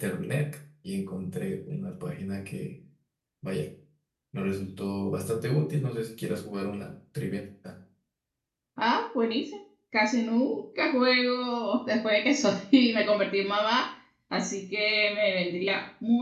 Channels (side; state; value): both; identical; correlation 1.00